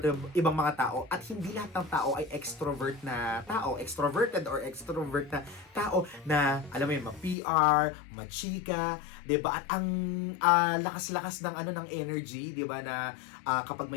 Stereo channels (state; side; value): drops out; right; at 7.4 s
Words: mga tao, at hindi lahat ng tao ay extrovert na tao, extroverted or extrovert na tao na alam mo yun, ma-PR, ma-chika, 'di ba? At ang lakas-lakas ng ng energy, 'di ba, na kapag